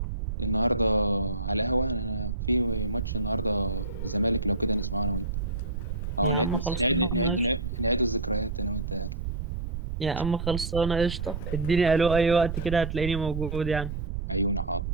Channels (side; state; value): right; noise; rumble, 4 dB below the sound